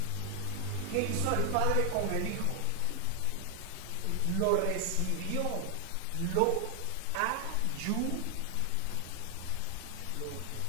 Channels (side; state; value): both; different; correlation 0.00